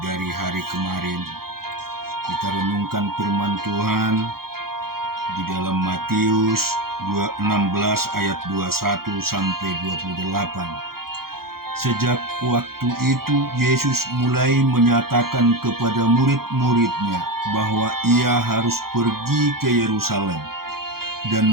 dari hari kemarin. Kita renungkan firman Tuhan di dalam Matius 16 ayat 21 sampai 28. Sejak waktu itu Yesus mulai menyatakan kepada murid-muridnya bahwa ia harus pergi ke Yerusalem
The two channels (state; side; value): late; left; 0.94 ms